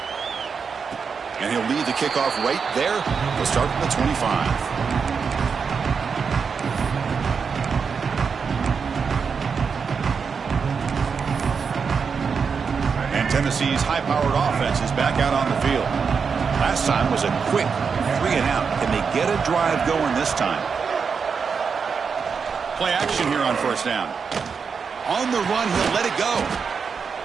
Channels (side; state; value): left; quieter; 5.8 dB